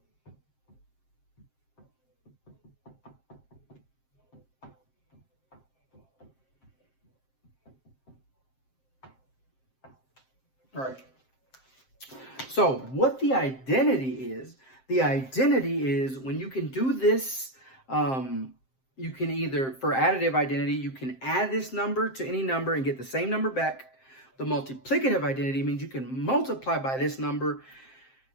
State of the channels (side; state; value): right; late; 7.6 ms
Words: All right. So what the identity is when you can do this, you can either, for additive identity, you can add this number to any number and get the same number back. The multiplicative identity means you can multiply by this number